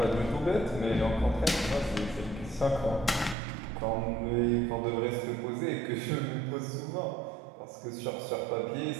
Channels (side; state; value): left; drops out; at 3.4 s